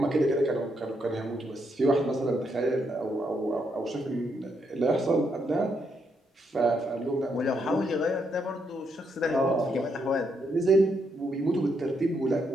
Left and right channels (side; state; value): both; normal; correlation 0.78